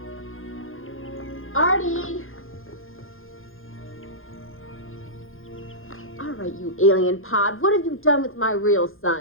Artie. All right, you alien pod. What have you done with my real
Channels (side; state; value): right; late; 0.60 ms